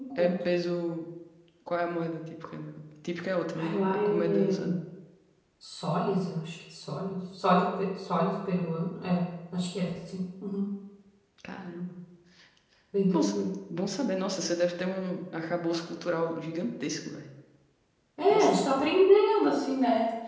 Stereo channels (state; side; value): identical; both; correlation 1.00